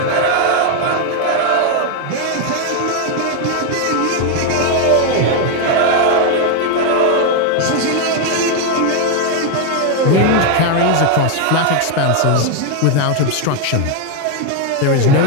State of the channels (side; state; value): both; different; correlation 0.01